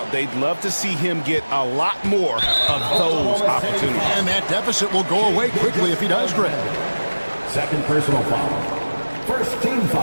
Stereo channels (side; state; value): both; inverted; correlation -1.00